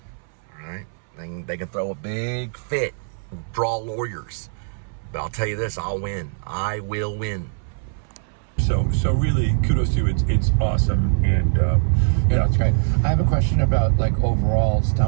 All right? They can throw a big fit, draw lawyers. But I'll tell you this, I'll win. I will win. So really, kudos to you. It's awesome, and yeah, it's great. I have a question about like overall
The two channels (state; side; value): silent; left; 64 dB below the other